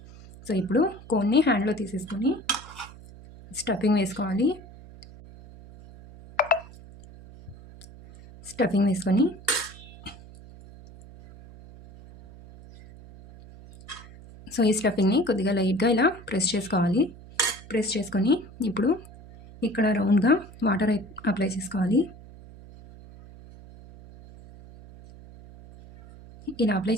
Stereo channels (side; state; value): right; noise; hum, 19 dB below the sound